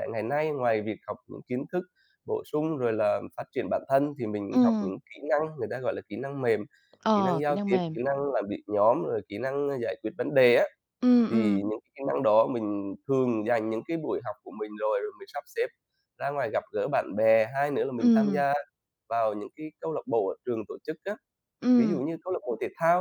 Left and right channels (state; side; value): identical; both; correlation 1.00